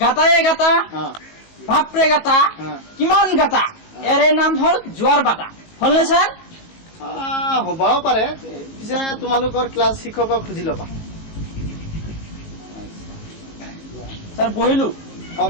গাটায়ে গাটা বাপৰে গাটা কিমান গাটা এৰে নাম হল জোয়ার বাটা হলনে স্যার? হ'বও পাৰে পিছে তোমালোকৰ ক্লাছ শিক্ষকক সুধি ল'বা স্যার বহিলো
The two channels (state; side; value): late; right; 19 ms